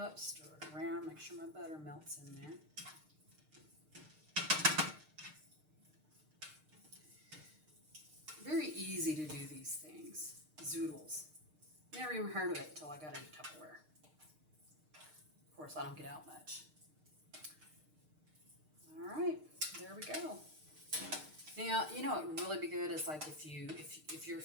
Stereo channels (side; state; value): left; late; 6.5 ms